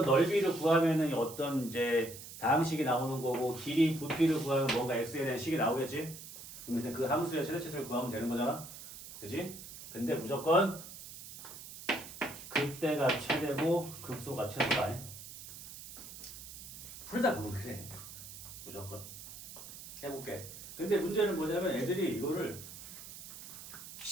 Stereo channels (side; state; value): right; noise; hiss, 13 dB below the sound